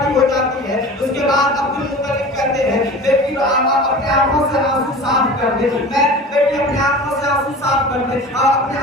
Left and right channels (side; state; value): both; normal; correlation 0.37